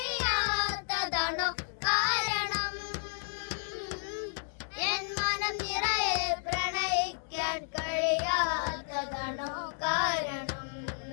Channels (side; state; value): right; silent; digital silence